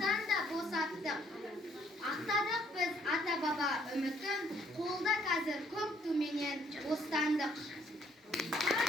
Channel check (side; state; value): both; normal; correlation 0.66